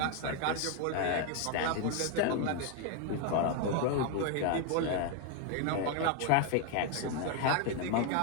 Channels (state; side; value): different; both; correlation 0.01